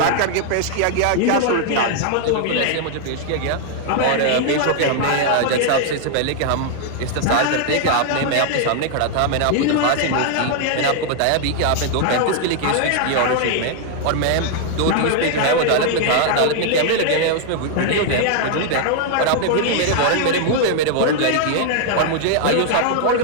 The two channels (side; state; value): both; different; correlation 0.00